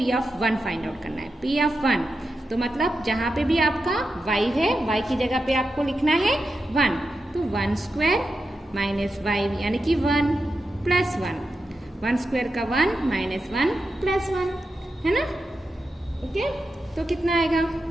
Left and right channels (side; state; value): both; normal; correlation 0.89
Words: ऑफ 1 फाइंड आउट करना है। p ऑफ 1 तो मतलब जहाँ पे भी आपका y है, y की जगह पे आपको लिखना है 1, तो 1² माइनस y यानी कि 1 प्लस 1 का 1 माइनस 1 प्लस 1, है ना। ओके, तो कितना आएगा,